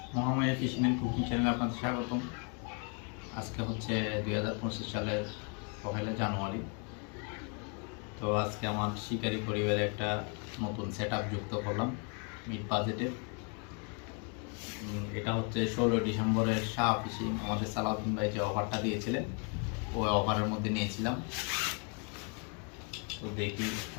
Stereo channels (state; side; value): quieter; right; 37.6 dB